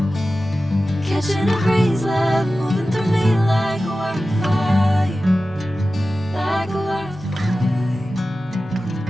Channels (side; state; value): both; normal; correlation 0.94